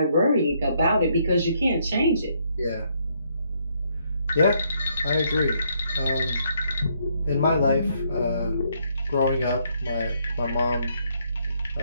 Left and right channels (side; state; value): both; inverted; correlation -0.72